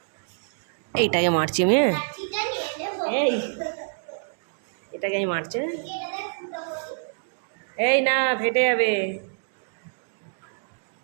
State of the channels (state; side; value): silent; left; digital silence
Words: এইটাকে মারছি আমি। এই এটাকে আমি মারছি। এই না, ফেটে যাবে।